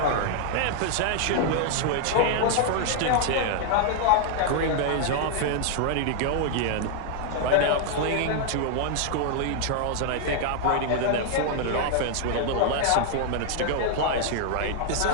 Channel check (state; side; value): different; both; correlation 0.00